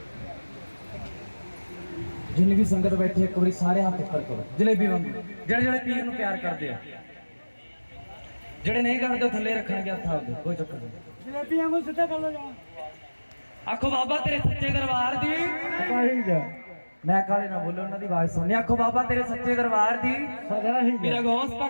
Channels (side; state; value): both; inverted; correlation -1.00